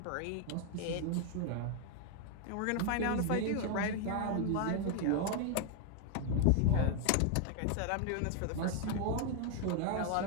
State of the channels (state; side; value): different; both; correlation 0.01